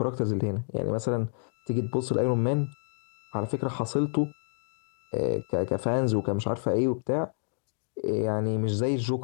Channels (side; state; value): right; silent; digital silence